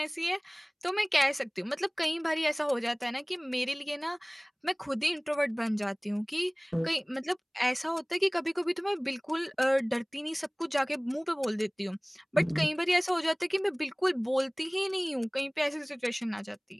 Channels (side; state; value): both; identical; correlation 1.00